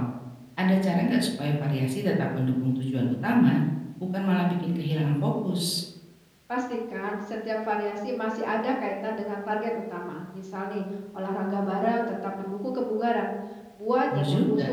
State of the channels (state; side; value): identical; both; correlation 1.00